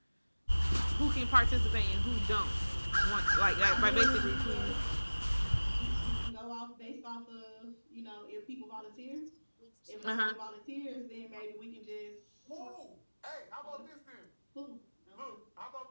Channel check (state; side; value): inverted; both; correlation -1.00